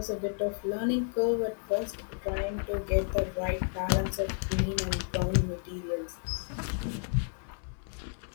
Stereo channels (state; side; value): silent; right; 57 dB below the other